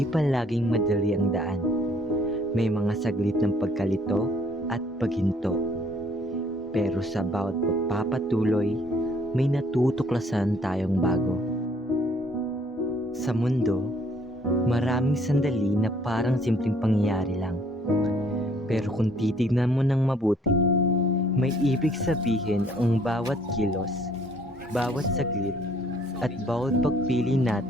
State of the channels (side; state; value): both; normal; correlation 0.62